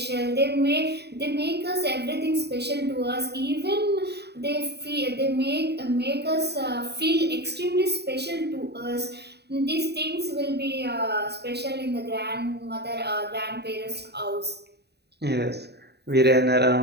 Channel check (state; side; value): late; left; 0.48 ms